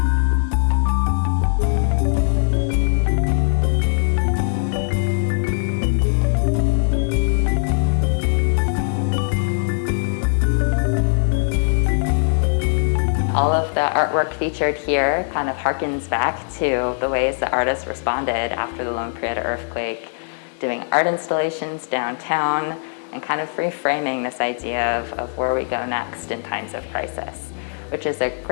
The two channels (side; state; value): right; silent; digital silence